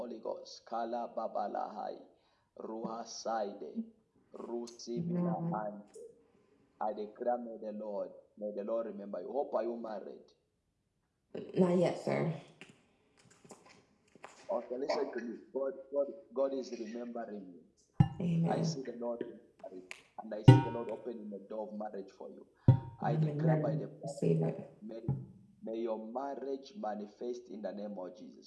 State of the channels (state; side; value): identical; both; correlation 1.00